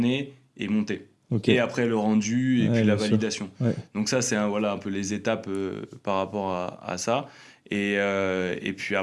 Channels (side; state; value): both; identical; correlation 1.00